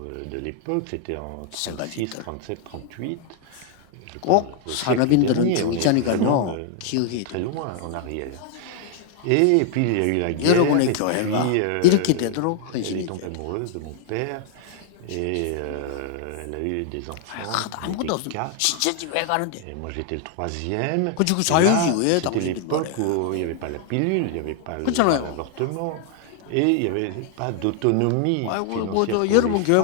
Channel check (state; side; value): different; both; correlation 0.00